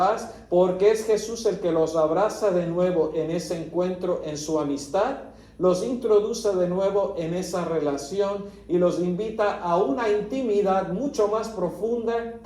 porque es Jesús el que los abraza de nuevo en ese encuentro, en su amistad, los introduce de nuevo en esa relación y los invita a una intimidad mucho más profunda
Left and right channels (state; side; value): identical; both; correlation 1.00